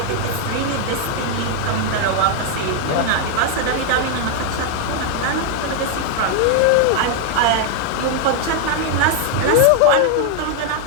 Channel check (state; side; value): different; both; correlation 0.00